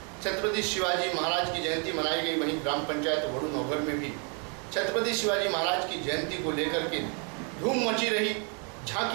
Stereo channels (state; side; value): quieter; left; 38.4 dB